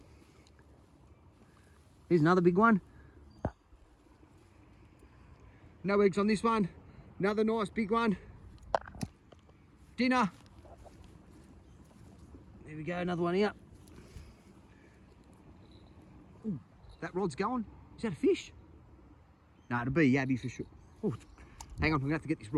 Here's another big one. No eggs on this one. Another nice big one. Dinner. There we go, another one here. Ooh, that rod's going. Is that a fish? No, it'll be a yabby for sure. Ooh, hang on, I'm gonna have to get this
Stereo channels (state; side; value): identical; both; correlation 1.00